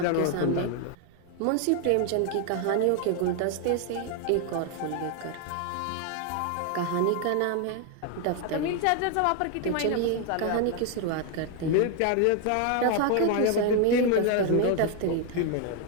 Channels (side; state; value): both; different; correlation 0.01